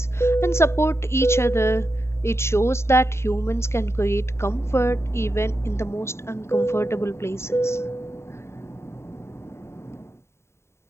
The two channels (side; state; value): right; late; 0.13 ms